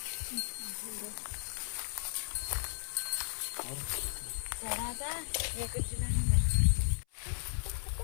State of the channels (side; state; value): right; silent; 54 dB below the other